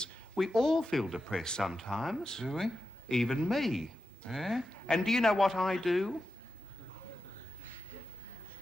We all feel depressed sometimes. Do we? Even me. Yeah? And do you know what I do?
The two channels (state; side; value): normal; both; correlation 0.90